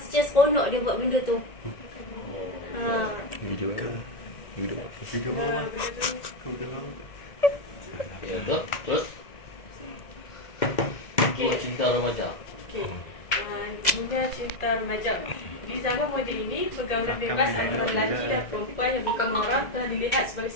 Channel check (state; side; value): late; right; 2.0 ms